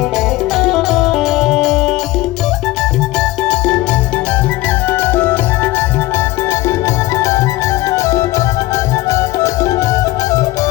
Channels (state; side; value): quieter; right; 17.9 dB